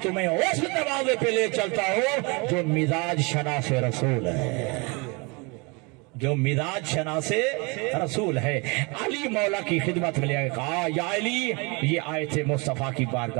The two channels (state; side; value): quieter; left; 29.3 dB